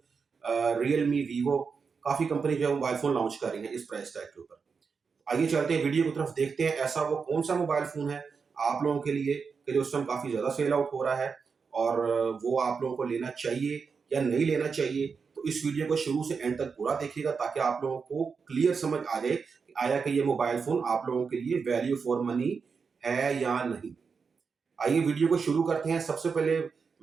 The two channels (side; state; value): left; quieter; 5.5 dB